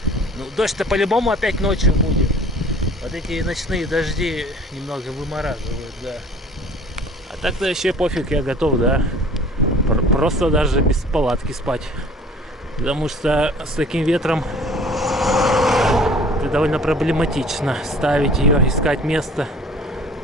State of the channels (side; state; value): both; normal; correlation 0.49